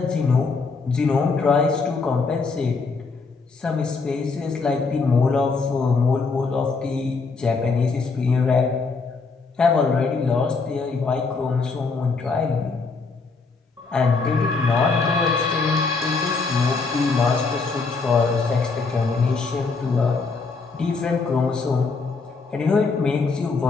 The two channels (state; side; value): quieter; right; 4.3 dB